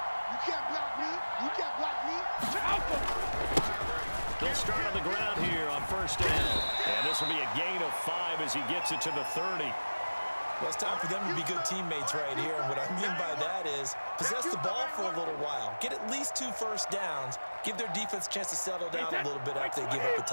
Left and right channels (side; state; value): both; inverted; correlation -1.00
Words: They'll start on the ground here on 1st down. And this will be a gain of 5 as he gets it to the 30. Well, it's time for them to be good teammates right here. And what I mean by that is possess the ball for a little while. Get at least 2 first downs. Give their defense a chance to settle down a little bit after they give up a